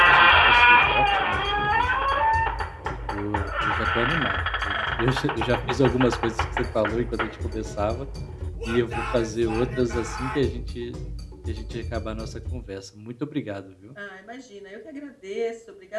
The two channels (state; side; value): identical; both; correlation 1.00